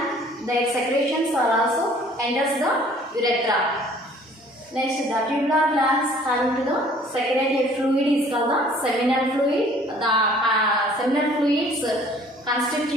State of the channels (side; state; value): both; normal; correlation 0.54